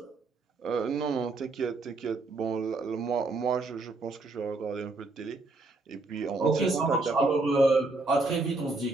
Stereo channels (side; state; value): left; quieter; 3.4 dB